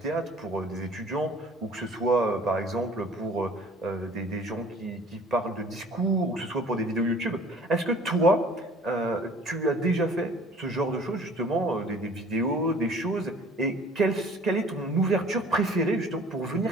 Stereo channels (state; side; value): normal; both; correlation 0.50